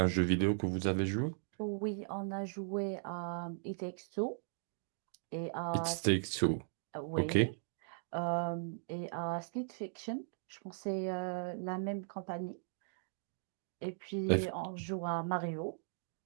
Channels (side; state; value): left; silent; digital silence